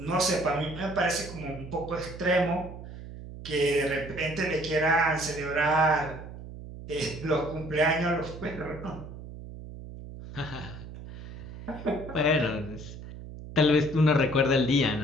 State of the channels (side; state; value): right; noise; hum, 12 dB below the sound